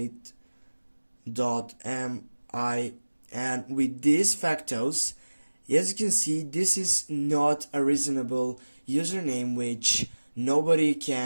and with these factors, as you can see, this is not a reasonable username which nobody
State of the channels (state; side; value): inverted; both; correlation -1.00